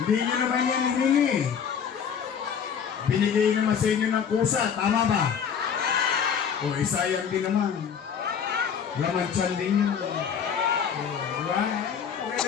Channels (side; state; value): right; quieter; 7.4 dB